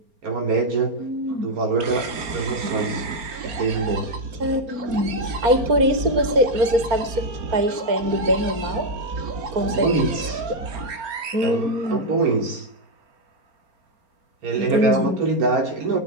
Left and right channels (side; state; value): left; late; 4.3 ms